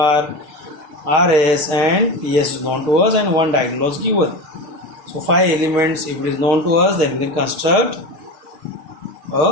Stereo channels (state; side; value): late; left; 6.5 ms